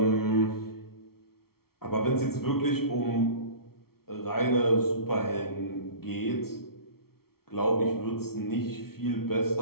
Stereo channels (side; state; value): right; late; 0.94 ms